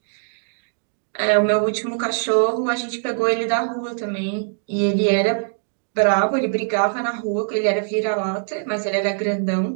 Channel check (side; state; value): left; silent; digital silence